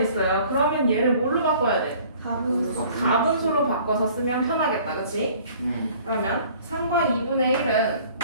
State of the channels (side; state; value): both; inverted; correlation -0.53